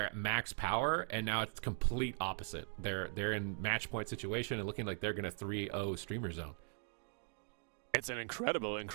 at max power, and now it's complete opposite. They're in match point situation and looking like they're going to 3-0 Streamer Zone. It's an incredible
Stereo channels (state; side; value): silent; left; 51 dB below the other